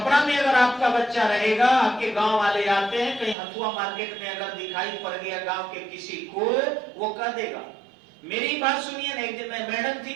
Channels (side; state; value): left; drops out; at 3.4 s